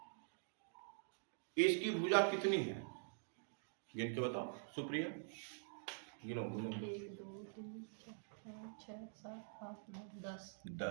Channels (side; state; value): left; silent; digital silence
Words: इसकी भुजा कितनी है? गिन के बताओ सुप्रिया, गिनो। 1 2 3 4 5 6 7 8 9